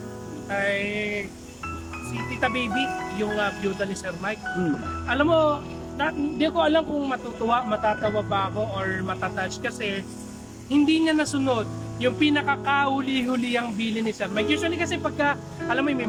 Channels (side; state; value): both; identical; correlation 1.00